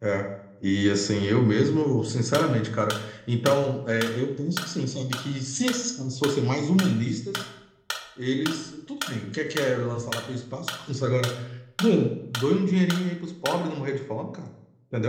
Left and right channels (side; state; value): both; identical; correlation 1.00